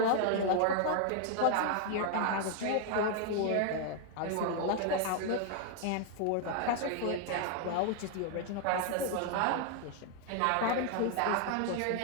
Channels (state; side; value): different; both; correlation 0.00